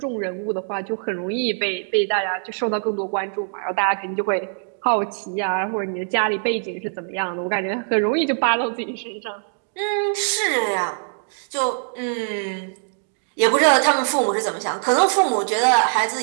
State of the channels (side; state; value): left; silent; digital silence